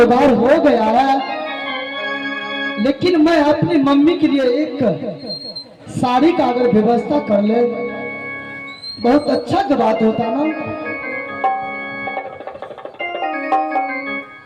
हो गया है, लेकिन मैं अपनी मम्मी के लिए एक साड़ी का अगर व्यवस्था कर ले बहुत अच्छा की बात होता ना।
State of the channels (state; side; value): identical; both; correlation 1.00